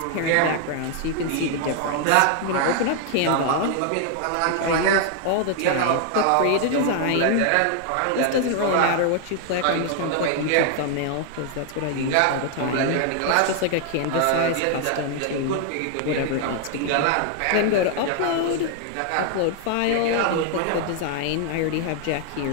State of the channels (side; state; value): both; different; correlation 0.00